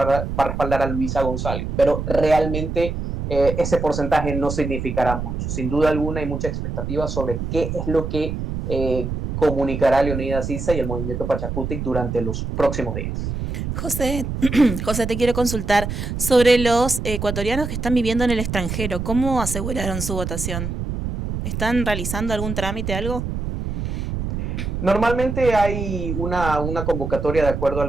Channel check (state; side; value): noise; right; rumble, 4 dB below the sound